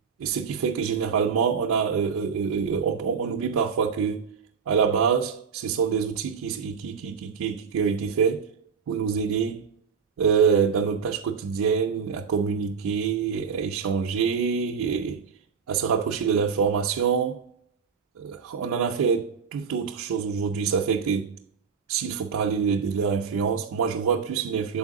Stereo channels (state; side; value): quieter; left; 6.2 dB